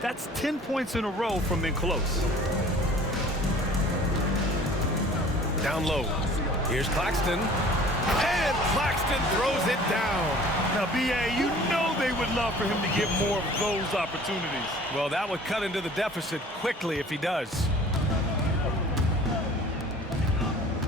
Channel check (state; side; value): normal; both; correlation 0.48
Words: 10 points in a row from in close. Down low. Here's Claxton. And Claxton throws it down. Now, B.A., you know they would love for him to get more of those opportunities. Well, that would cut into the deficit quickly if he does.